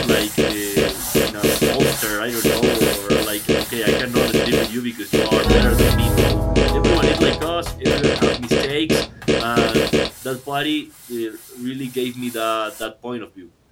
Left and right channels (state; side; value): identical; both; correlation 1.00